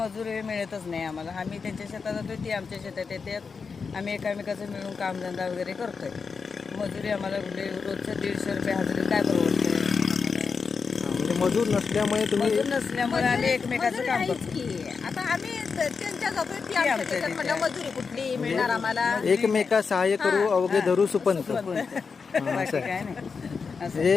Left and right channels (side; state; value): right; quieter; 5.3 dB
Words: मिळतच नाही आम्हाला. आम्ही त्यांच्या शेतात जातो, ती आमच्या शेतात येतात. आम्ही एकामेकाचं मिळून कामधंदा वगैरे करतोय. मजुरी आम्हाला रोजचं 150 रुपये हजेरी काय परवडतं. म्हणजे मजूर नसल्यामुळे तुम्ही मजूर नसल्यामुळे आम्ही एकमेकाचं काम करतो. की आता आम्ही त्यांच्या जातोय ती आमच्या त्याच्यात म्हणलं मजुरी कुठली मिळणार आम्हाला. एकमेका सहाय्य करू अवघे धरू सुपंत. बाकी काय नाही.